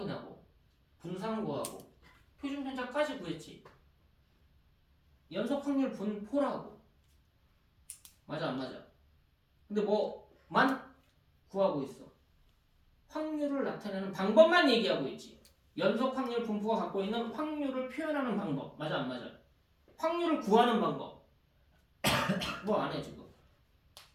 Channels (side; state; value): both; identical; correlation 1.00